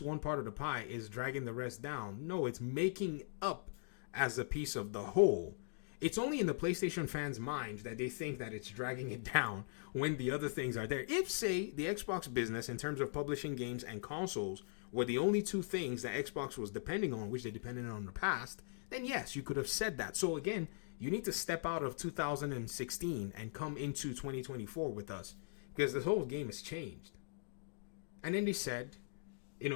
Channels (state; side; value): silent; right; digital silence